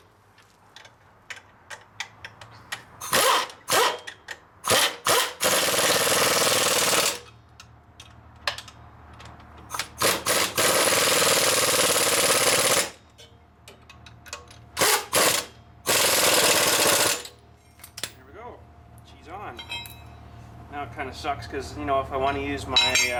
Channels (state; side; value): identical; both; correlation 1.00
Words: On. Now it kind of sucks because, you know, if I want to use my